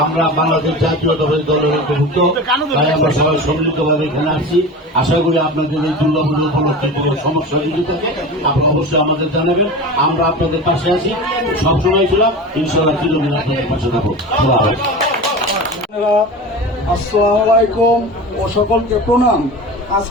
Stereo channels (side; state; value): both; normal; correlation 0.31